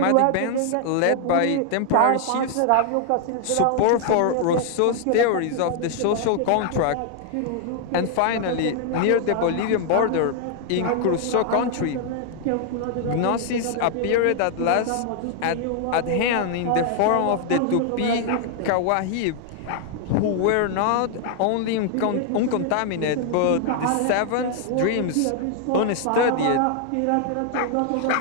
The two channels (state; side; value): different; both; correlation 0.00